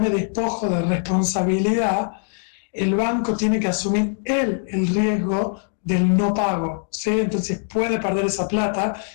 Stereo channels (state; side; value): silent; right; 64 dB below the other